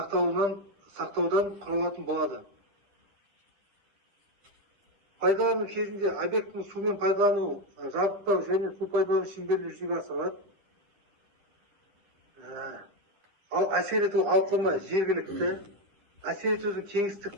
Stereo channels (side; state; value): left; late; 10 ms